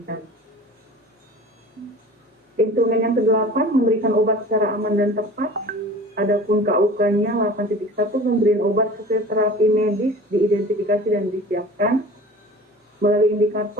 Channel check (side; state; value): both; normal; correlation 0.41